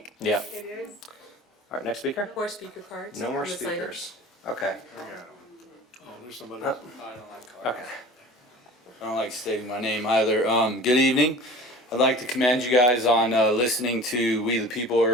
Yeah. It is. All right, next speaker? More speaker cards. No more on the sign-up. speakers. Okay. Oh, there's somebody Uh, else. Okay. I don't like stating my name either. Good evening. I'd like to commend you guys on listening to We the People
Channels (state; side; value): normal; both; correlation 0.40